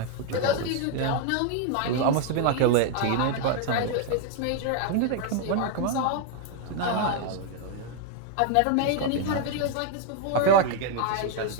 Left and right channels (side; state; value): both; different; correlation 0.00